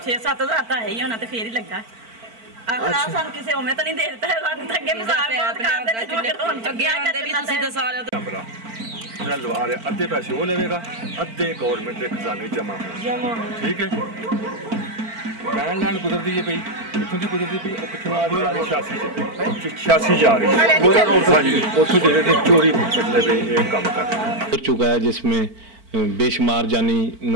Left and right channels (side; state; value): left; late; 4.5 ms